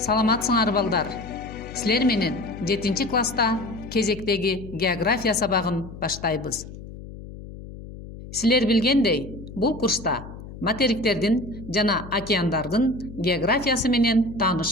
балдар. Силер менен 7 класста кезектеги география сабагын баштайбыз. Силер билгендей, бул курста материктердин жана океандардын географиясы менен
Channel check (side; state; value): left; noise; hum, 14 dB below the sound